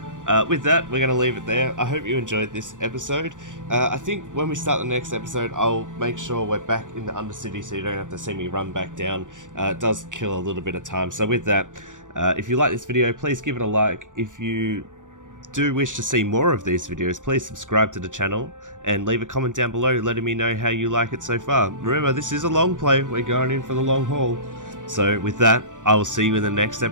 With that, we're going to leave it there. I hope you enjoyed this episode. I think when we start the next episode, I'll make sure we're back in the Undercity so you don't have to see me run back down. It does kill a little bit of time. So with that, if you like this video, please give it a like. If you do wish to see more of these videos, please subscribe to the channel and leave a comment down below letting me know how you like it so far. Remember, this is a long play. We're going in for the long haul. So with that, I will see you in the next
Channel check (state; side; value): late; left; 0.87 ms